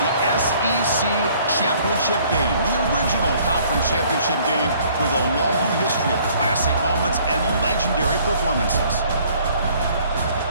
the SEC Championship game, the original conference championship game with a long history of classic moments and legendary performances.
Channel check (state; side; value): inverted; both; correlation -0.59